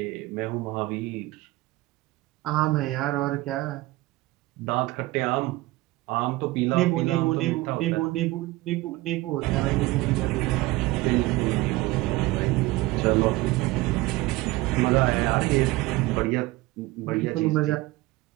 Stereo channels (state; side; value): quieter; left; 19.6 dB